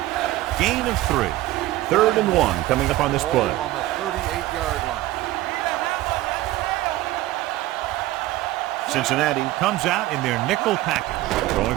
Gain of 3. 3rd and 1 coming up on this play. On the 38-yard line. Cincinnati comes out in their nickel package. Going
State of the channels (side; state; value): left; quieter; 16.5 dB